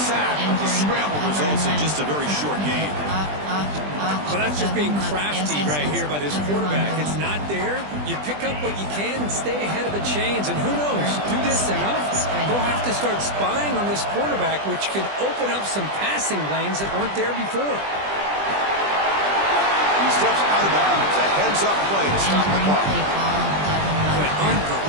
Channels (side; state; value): left; late; 20 ms